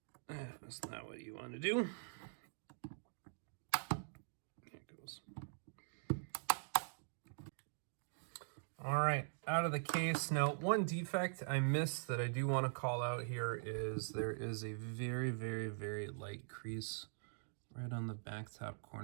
that's not what you want to do. There it goes. All right, out of the case. Now, one defect I missed that I do want to call out here is there is a very, very, very light crease right on the back top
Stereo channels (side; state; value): left; silent; digital silence